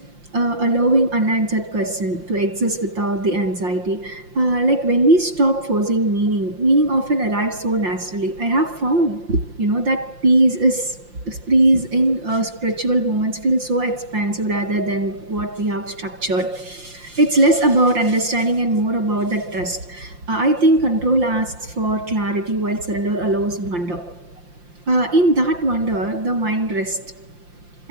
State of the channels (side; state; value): left; late; 5.7 ms